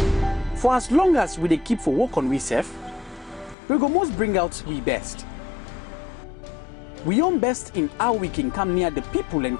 For as long as we dey keep for work on we self, we go most bring out we best. We own best in how we can come near the people and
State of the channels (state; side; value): drops out; right; at 3.6 s